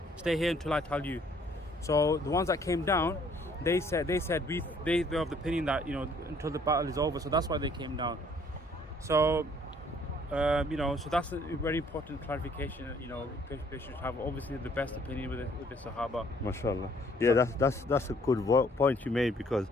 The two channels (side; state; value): both; normal; correlation 0.61